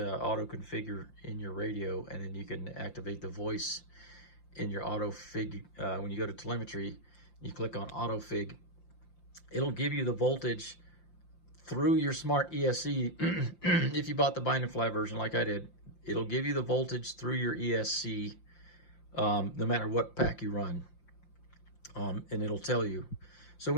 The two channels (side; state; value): right; late; 5.8 ms